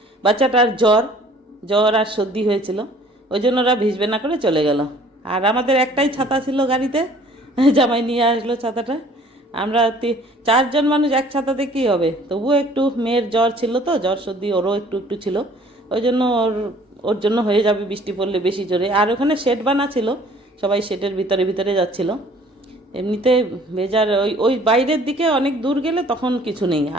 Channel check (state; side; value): normal; both; correlation 0.54